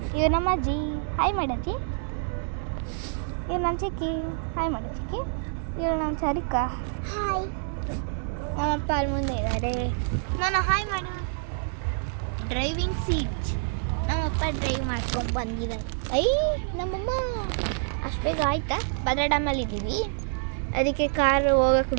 ಇವ್ರು ನಮ್ಮ ಅಜ್ಜಿ, ಹಾಯ್ ಮಾಡಜ್ಜಿ. ಇವ್ರು ನನ್ನ ಚಿಕ್ಕಿ, ಹಾಯ್ ಮಾಡ ಚಿಕ್ಕಿ. ಇವ್ರು ನಮ್ಮ ಚಾರಿಕಾ, ಹಾಯ್. ನಮ್ಮಪ್ಪ ಅಲ್ಲಿ ಮುಂದೆ ಇದ್ದಾರೆ, ನಾನು ಹಾಯ್ ಮಾಡು. ಡ್ರೈವಿಂಗ್ ಸೀಟ್, ನಮ್ಮಪ್ಪ ಡ್ರೈವ್ ಮಾಡ್ಕೊಂಡು ಬಂದಿದ್ದಾರೆ. ನಮ್ಮಮ್ಮ ಅಷ್ಟು ಬೇಗ ಆಯ್ತಾ? ಭದ್ರಾ ಡ್ಯಾಮಲ್ಲಿ ಇದ್ದೀವಿ, ಅದಕ್ಕೆ ಕಾರ್ ಹೋಗಕ್ಕೆ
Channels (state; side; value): silent; left; digital silence